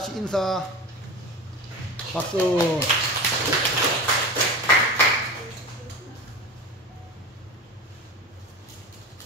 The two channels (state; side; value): normal; both; correlation 0.29